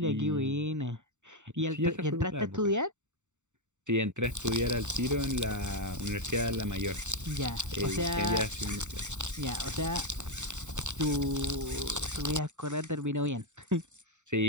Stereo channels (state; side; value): late; left; 0.84 ms